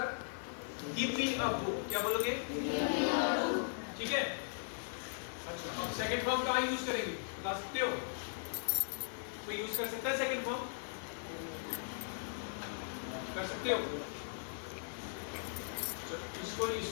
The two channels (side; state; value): right; silent; digital silence